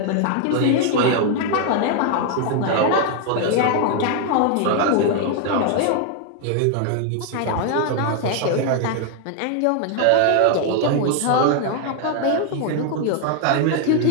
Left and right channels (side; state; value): both; different; correlation 0.00